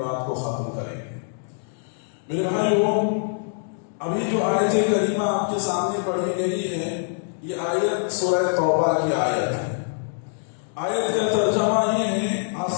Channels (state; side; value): silent; right; digital silence